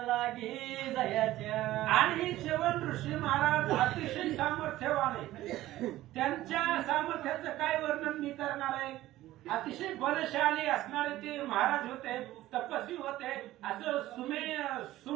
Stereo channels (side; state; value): left; quieter; 15.5 dB